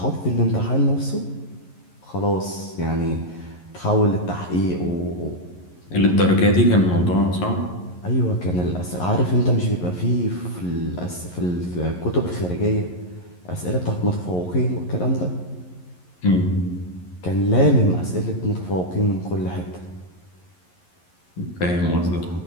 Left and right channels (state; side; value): late; right; 11 ms